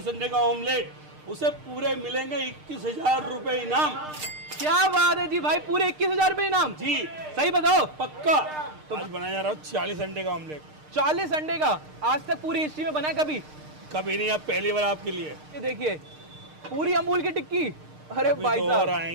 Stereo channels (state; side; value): late; left; 6.6 ms